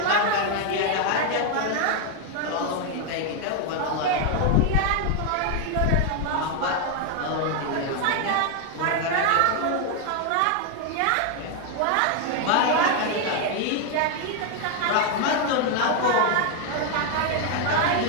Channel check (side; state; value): both; different; correlation 0.01